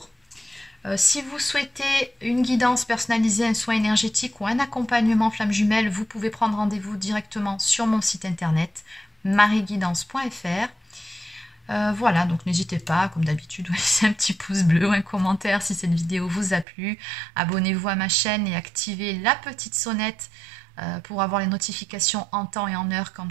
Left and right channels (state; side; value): drops out; left; at 16.7 s